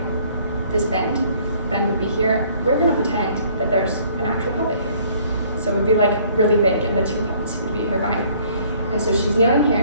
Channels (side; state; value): both; inverted; correlation -0.60